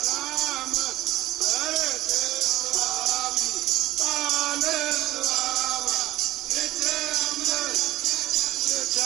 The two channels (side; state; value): left; quieter; 16.4 dB